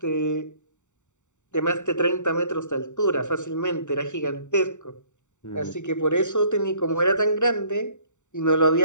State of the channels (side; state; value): right; late; 0.84 ms